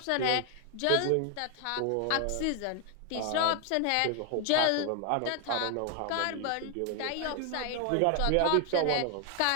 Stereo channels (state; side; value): different; both; correlation 0.00